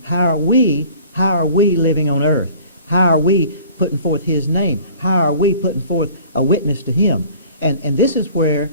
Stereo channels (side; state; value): both; inverted; correlation -0.48